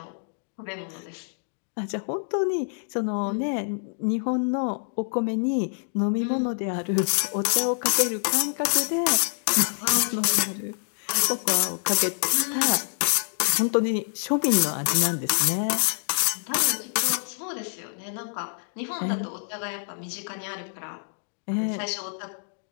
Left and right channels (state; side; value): silent; right; digital silence